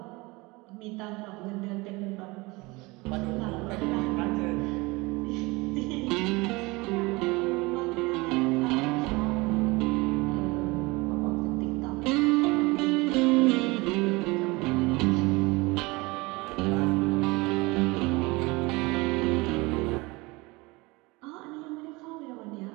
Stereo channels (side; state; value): left; quieter; 23.9 dB